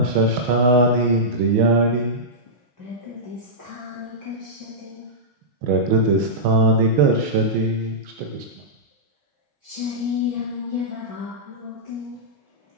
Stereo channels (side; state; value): left; late; 6.2 ms